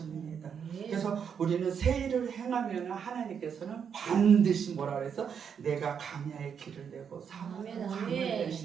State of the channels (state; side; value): quieter; left; 7.3 dB